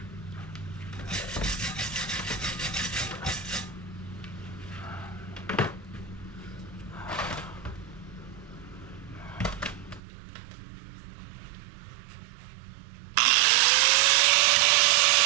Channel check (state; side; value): drops out; left; at 10.0 s